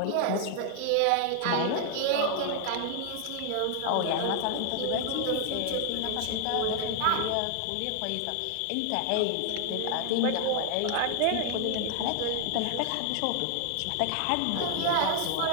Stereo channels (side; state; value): both; different; correlation 0.00